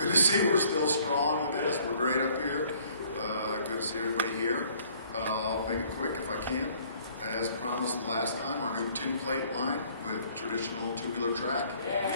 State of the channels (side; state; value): both; inverted; correlation -0.58